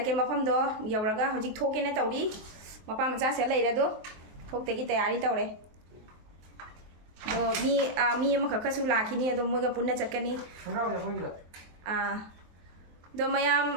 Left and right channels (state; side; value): late; left; 23 ms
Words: mafam do yauraga hojik thoke ne tawri. Mapa macha se lai re do. Thok te gi tayari tawre. Do mi ma ka su la khini do moga punna chakani. Do